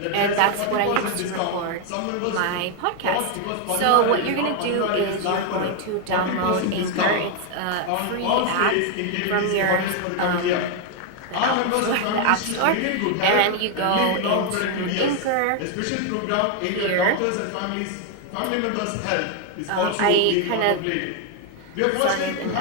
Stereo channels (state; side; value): different; both; correlation 0.01